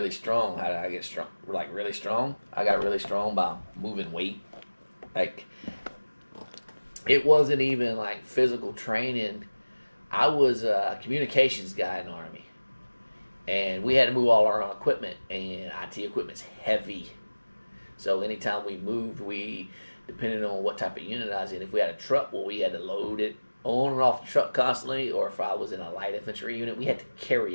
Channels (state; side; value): inverted; both; correlation -1.00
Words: strong. How did I get strong? Like really strong? I got really strong by moving weight. Like it wasn't even like physical training. I was a communications guy in the Army. And we had to move all our own equipment, and IT equipment's heavy. So anytime we moved, depending on what type of unit I was in, if we had a truck, well, we had to load it on and off the truck constantly, or if I was in a light infantry unit, we had to